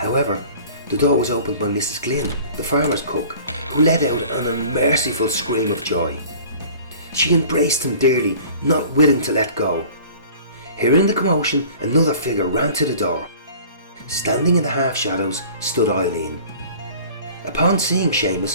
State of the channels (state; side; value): inverted; both; correlation -0.46